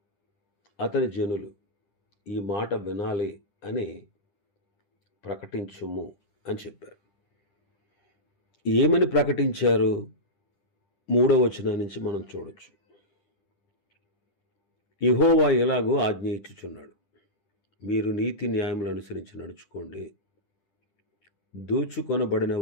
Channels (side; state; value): right; late; 10 ms